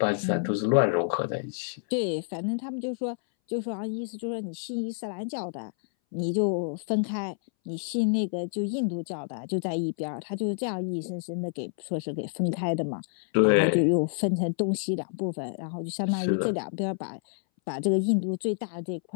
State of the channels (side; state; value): right; silent; 59 dB below the other